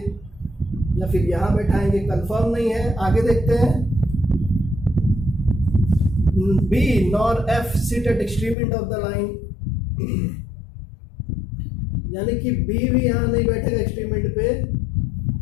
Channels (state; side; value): drops out; right; at 8.6 s